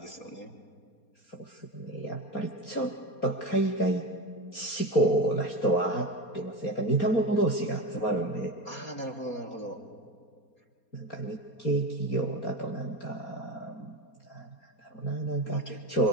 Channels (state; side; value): late; right; 4.3 ms